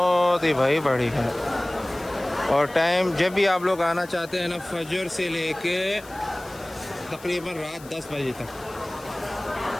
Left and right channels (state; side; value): noise; left; hiss, 21 dB below the sound